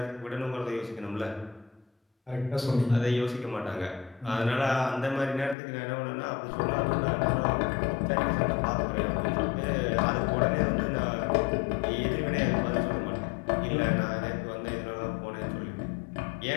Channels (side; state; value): right; drops out; at 5.6 s